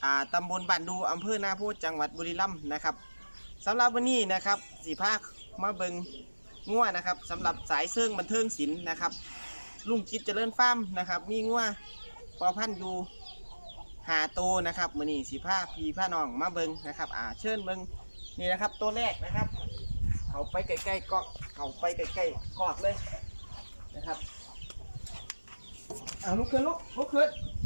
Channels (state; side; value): inverted; both; correlation -1.00